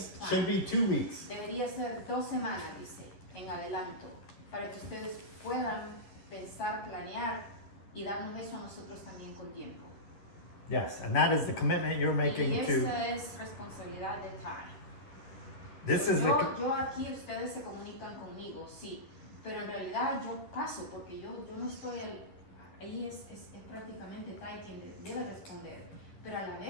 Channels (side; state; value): right; late; 11 ms